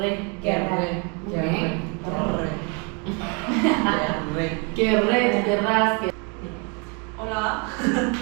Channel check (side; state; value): left; quieter; 31.8 dB